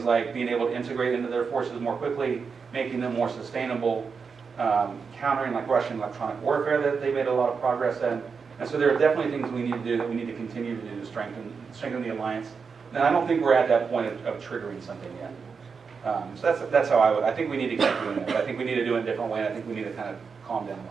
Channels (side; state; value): left; quieter; 5.5 dB